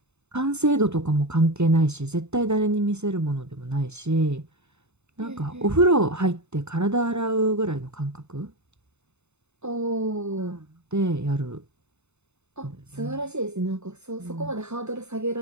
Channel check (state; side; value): late; left; 0.82 ms